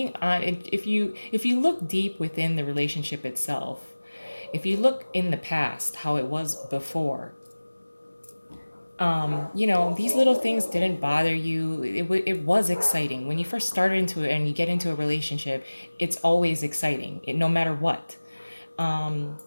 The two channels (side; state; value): both; inverted; correlation -1.00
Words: on, if you look deep within the relationship itself, if you look in the past, how it was before, these little things didn't bother you. It was exciting when you first started into it, and you get into a relationship. It's always exciting, no matter what.